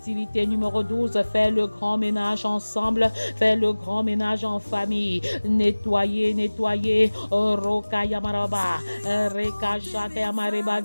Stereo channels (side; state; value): both; inverted; correlation -1.00